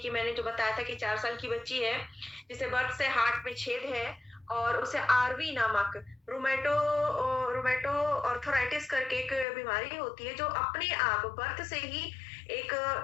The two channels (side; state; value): right; drops out; at 9.5 s